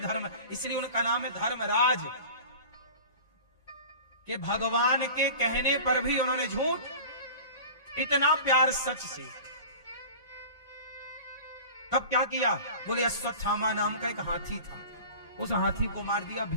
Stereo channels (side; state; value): both; inverted; correlation -0.38